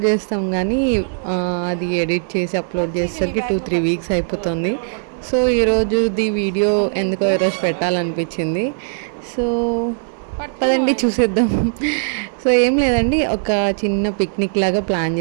చేస్తాం కానీ అది ఎడిట్ చేసి అప్లోడ్ చేసేసరికి 2-3 వీక్స్ అయిపోతుంది. సో ఈరోజుది వీడియో ఎందుకో ఈరోజు పెట్టాలనిపించింది. సో పదండి చూసేద్దాం. సో ఏం లేదండి, ఒక చిన్న పిక్నిక్ లాగా ప్లాన్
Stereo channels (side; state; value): left; silent; 62 dB below the other